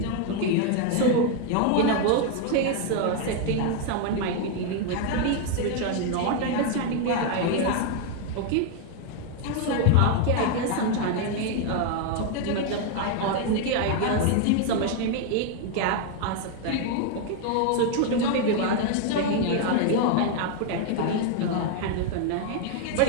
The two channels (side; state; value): both; different; correlation 0.01